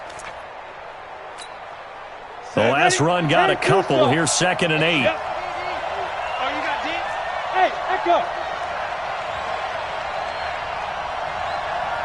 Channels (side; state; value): both; identical; correlation 1.00